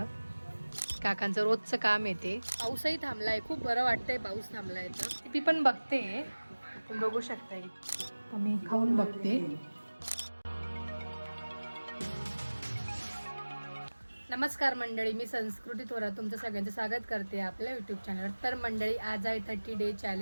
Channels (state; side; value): inverted; both; correlation -1.00